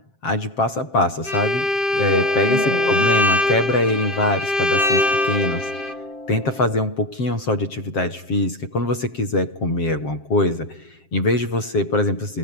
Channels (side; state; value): right; late; 7.5 ms